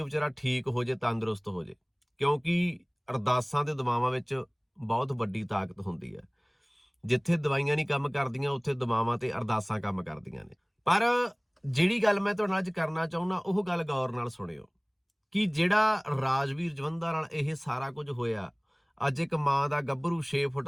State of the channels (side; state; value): both; identical; correlation 1.00